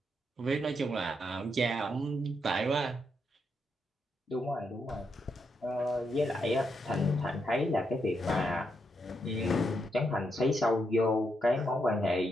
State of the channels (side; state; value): both; normal; correlation 0.81